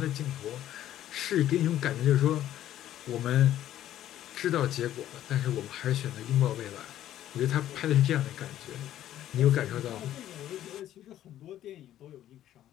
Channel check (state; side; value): quieter; right; 12.3 dB